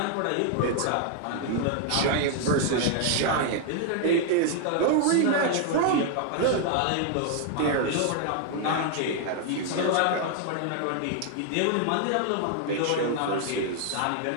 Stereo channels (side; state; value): both; different; correlation 0.00